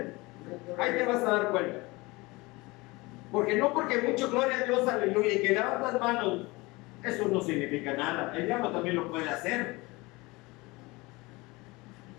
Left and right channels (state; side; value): quieter; right; 23.3 dB